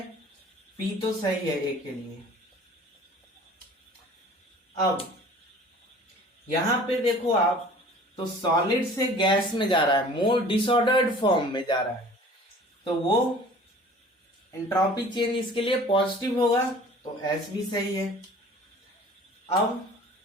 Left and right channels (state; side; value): normal; both; correlation 0.47